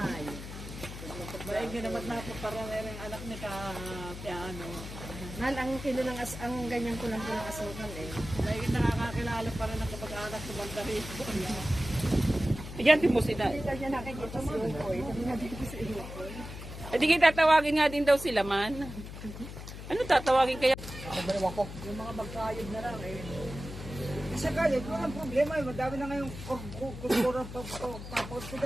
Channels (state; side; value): noise; left; hum, 11 dB below the sound